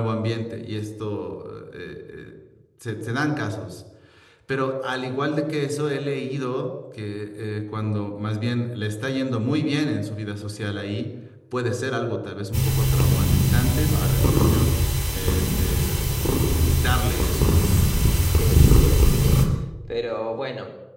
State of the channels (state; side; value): identical; both; correlation 1.00